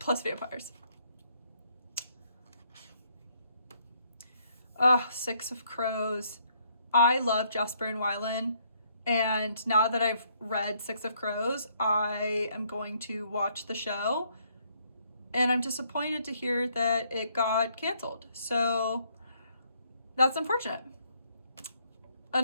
vampires. Six of Crows. I love Jesper and Wylan, and now that I've read Six of Crows, I am going to watch the show, and I'm disappointed to hear that it got canceled. So that's unfortunate.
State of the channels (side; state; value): both; inverted; correlation -0.69